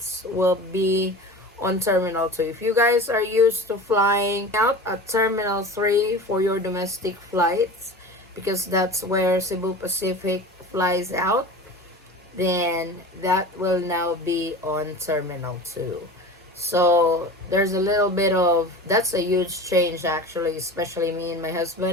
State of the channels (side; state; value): both; normal; correlation 0.34